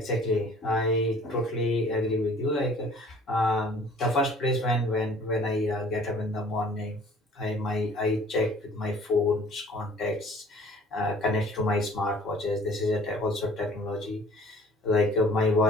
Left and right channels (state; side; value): normal; both; correlation 0.52